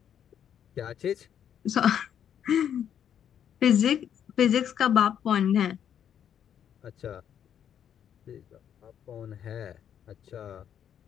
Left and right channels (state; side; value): quieter; right; 9.1 dB